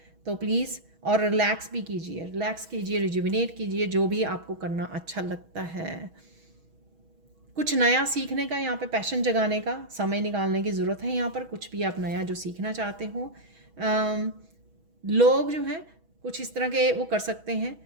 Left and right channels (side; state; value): left; late; 6.2 ms